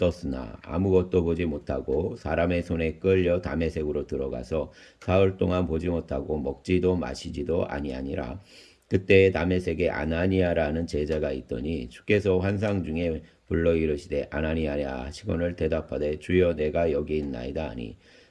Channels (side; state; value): both; identical; correlation 1.00